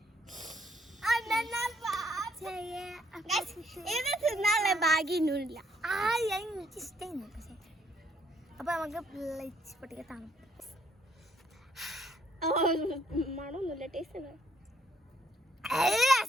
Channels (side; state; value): both; normal; correlation 0.69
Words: ഇത് തിന്നാനുള്ള ഭാഗ്യൊന്നുമില്ല. എനിക്ക് ഇഷ്ടമായിരുന്നു. പക്ഷേ അപ്പൊ നമുക്ക് പൊട്ടിക്ക തണുപ്പ്. മണമൊന്നുമില്ല, ടേസ്റ്റ്